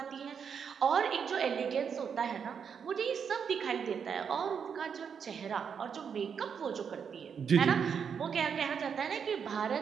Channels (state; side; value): quieter; left; 6.9 dB